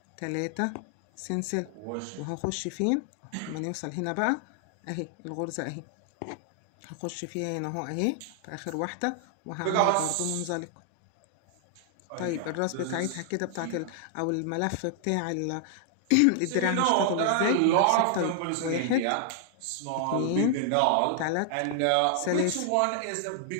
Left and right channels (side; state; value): both; different; correlation 0.00